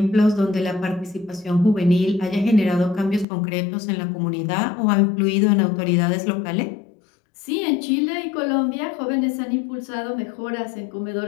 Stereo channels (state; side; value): drops out; right; at 3.2 s